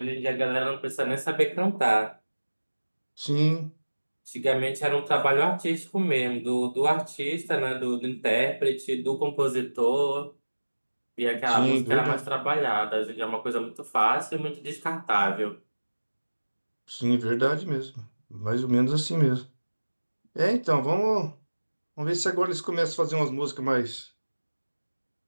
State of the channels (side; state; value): both; inverted; correlation -1.00